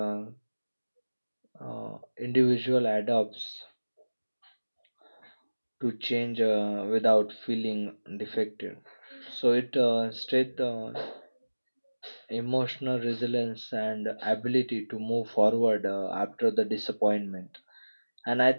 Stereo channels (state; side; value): inverted; both; correlation -1.00